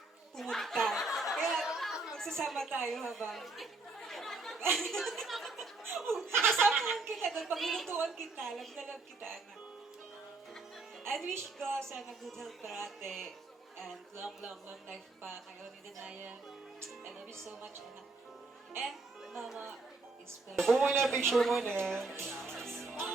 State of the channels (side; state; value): left; quieter; 3.5 dB